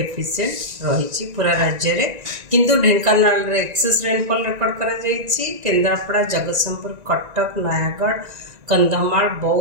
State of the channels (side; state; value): left; late; 1.9 ms